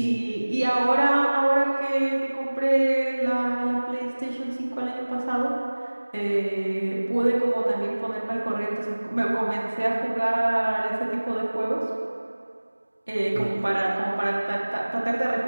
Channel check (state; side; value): inverted; both; correlation -1.00